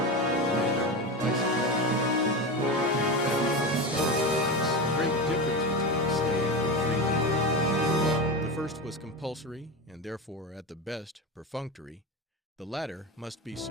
and our own prices. We found a great difference between slave and free labor. The first was compulsory, and therefore, at the best, perfunctory. The latter must be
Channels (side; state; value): both; normal; correlation 0.21